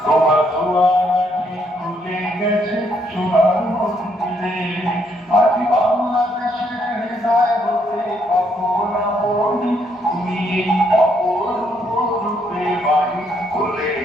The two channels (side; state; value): both; normal; correlation 0.72